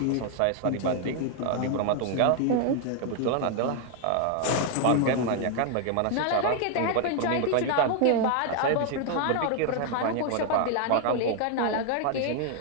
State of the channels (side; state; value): both; different; correlation 0.00